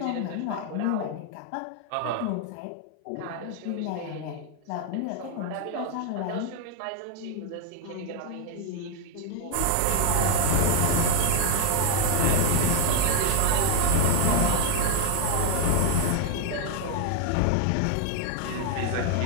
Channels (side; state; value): both; different; correlation 0.00